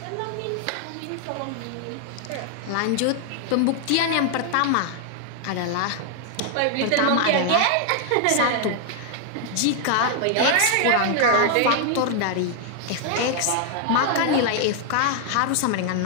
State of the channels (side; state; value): both; different; correlation 0.00